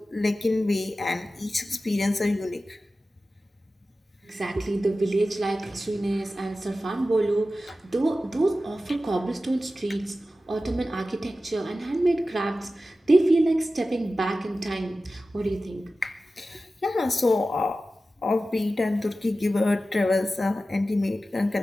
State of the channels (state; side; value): normal; both; correlation 0.94